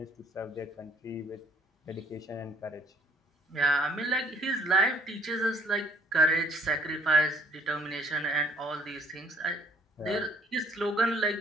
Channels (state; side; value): normal; both; correlation 0.61